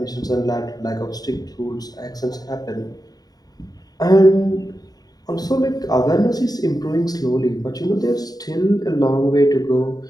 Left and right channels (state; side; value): late; right; 0.18 ms